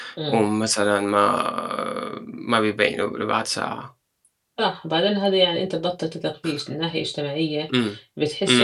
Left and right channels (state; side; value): identical; both; correlation 1.00